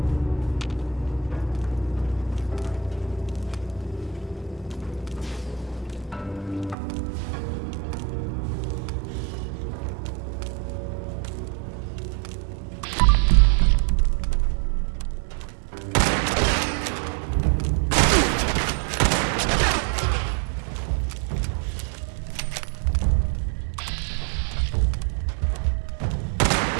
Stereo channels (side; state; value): left; drops out; at 6.8 s